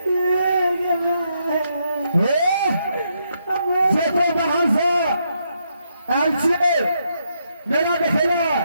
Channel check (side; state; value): both; inverted; correlation -0.78